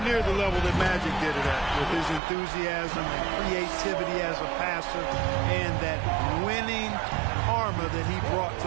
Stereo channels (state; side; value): drops out; left; at 2.2 s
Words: the level that Magic did it at, with his enthusiasm and creativity as a passer and that winning karma that he brought to